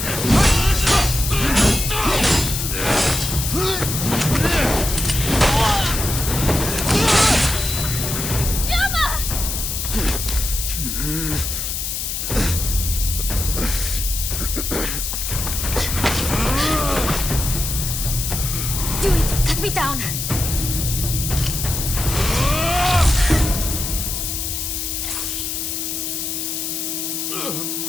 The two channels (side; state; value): left; noise; hiss, 3 dB below the sound